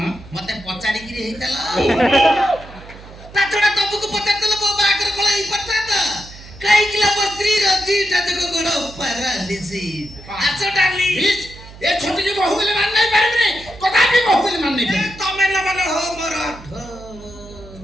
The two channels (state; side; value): noise; right; hum, 18 dB below the sound